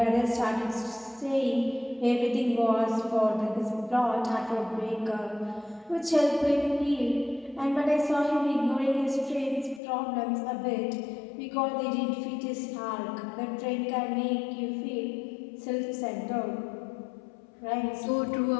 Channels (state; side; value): drops out; right; at 9.8 s